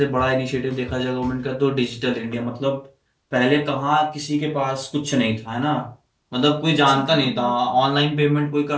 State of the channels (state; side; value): identical; both; correlation 1.00